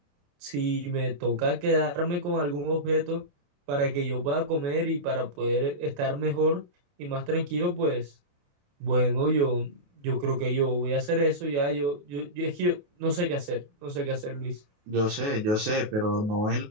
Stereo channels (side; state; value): left; late; 28 ms